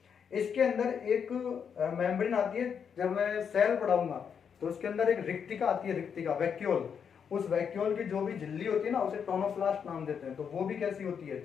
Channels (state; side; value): quieter; right; 7.1 dB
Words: इसके अंदर एक मेम्ब्रेन आती है। जब मैं सेल पढ़ाऊंगा तो उसके अंदर एक रिक्तिका आती है, रिक्तिका, वैक्यूल। उस वैक्यूल की जो भी झिल्ली होती है ना उसे टोनोप्लास्ट नाम देते हैं। तो वो भी कैसी होती है?